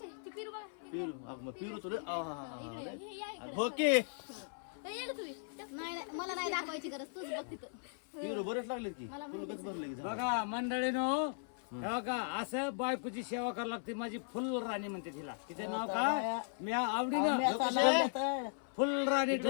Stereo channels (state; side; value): silent; right; 53 dB below the other